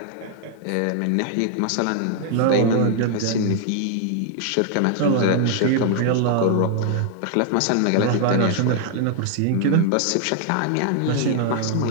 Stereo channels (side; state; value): both; different; correlation 0.00